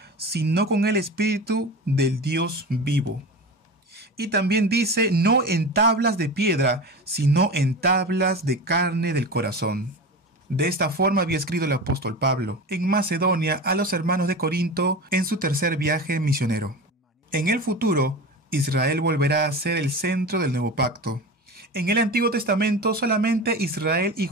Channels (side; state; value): both; normal; correlation 0.29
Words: sino con el Espíritu del Dios vivo. Y también dice, no en tablas de piedra, sino en tablas de carne del corazón. De esta forma había escrito el apóstol Pablo en Macedonia a los hermanos de Corinto en su tercer viaje misionero. En el futuro, Israel volverá a ser el centro del nuevo pacto. En el Antiguo Testamento solamente Israel y